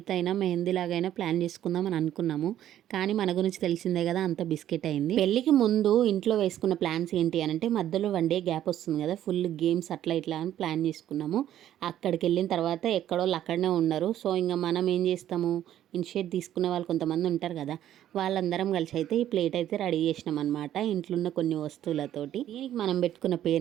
అయినా మెహందీ లాగైనా ప్లాన్ చేసుకుందాం అని అనుకున్నాము. కానీ మన గురించి తెలిసిందే కదా, అంత బిస్కెట్ అయింది. పెళ్ళికి ముందు ఇంట్లో వేసుకున్న ప్లాన్స్ ఏంటి అని అంటే మధ్యలో 1 డే గ్యాప్ వస్తుంది కదా, ఫుల్ గేమ్స్ అట్లా ఇట్లా అని ప్లాన్ చేసుకున్నాము. అక్కడికి వెళ్ళిన తర్వాత ఎక్కడోళ్ళు అక్కడనే ఉన్నారు. సో ఇంకా మనం ఏం చేస్తాము, ఇనిషియేట్ తీసుకున్న వాళ్ళు కొంతమంది ఉంటారు కదా, వాళ్ళందరం కలిసి అయితే ఈ ప్లేట్ అయితే రెడీ చేసినాం అనమాట, ఇంట్లో ఉన్న కొన్ని వస్తువులతోటి. దీనికి మనం పెట్టుకున్న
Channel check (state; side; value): quieter; left; 11.7 dB